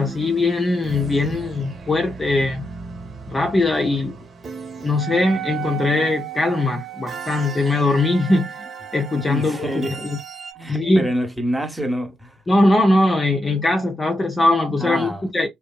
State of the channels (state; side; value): normal; both; correlation 0.84